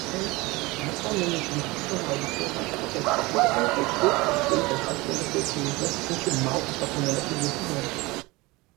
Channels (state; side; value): quieter; left; 22.6 dB